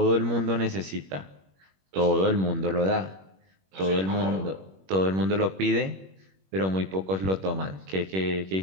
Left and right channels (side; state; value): left; late; 21 ms